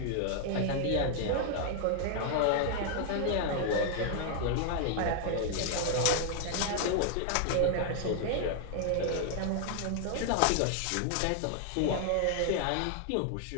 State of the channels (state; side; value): different; both; correlation 0.00